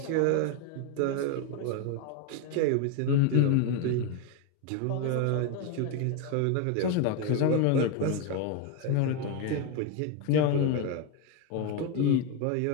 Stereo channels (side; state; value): both; different; correlation 0.02